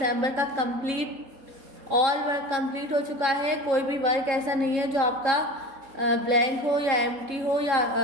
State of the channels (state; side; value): late; left; 3.7 ms